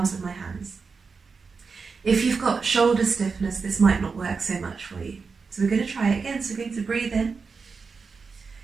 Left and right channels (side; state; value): left; quieter; 5.0 dB